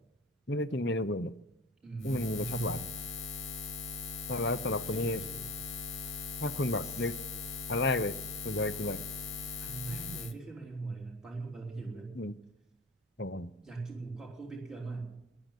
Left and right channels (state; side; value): normal; both; correlation 0.32